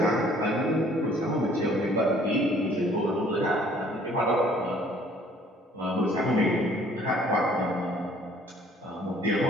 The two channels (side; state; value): both; normal; correlation 0.58